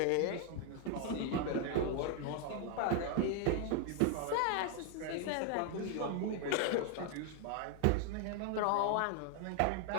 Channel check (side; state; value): both; different; correlation 0.00